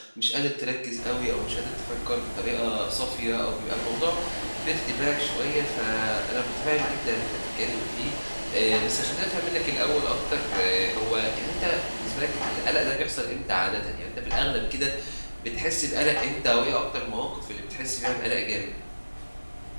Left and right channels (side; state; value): both; inverted; correlation -1.00